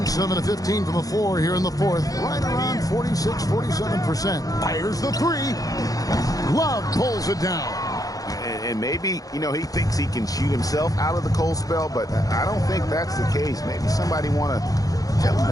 7 of 15 from the floor here in the fourth. Right around 46, 47%. Fires the three. Love pulls it down. And maybe, you know, he thinks he can shoot himself out of the cold spell, but I don't think that's the case. Maybe somebody want to tell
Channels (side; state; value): right; late; 0.17 ms